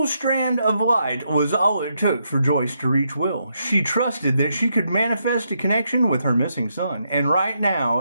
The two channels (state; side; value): inverted; both; correlation -0.79